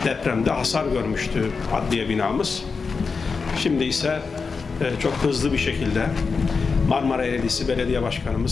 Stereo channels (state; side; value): quieter; right; 4.9 dB